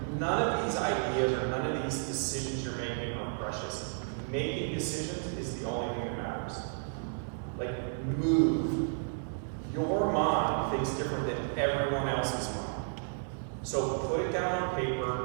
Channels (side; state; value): left; silent; digital silence